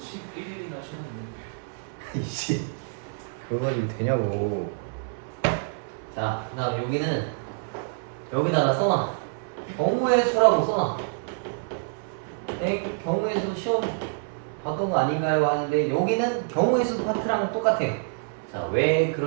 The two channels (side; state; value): left; silent; 60 dB below the other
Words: 쉬었는데. 이씨 그거 가지고 되냐고. 자, 그 다음 여기는 여기다가 써놔. 경우의 수라고 써놔. 경우의 수 시험 봤던 거 아닌가요? 하는데 여기는 경우의 수 파트랑 똑같아요. 자, 왜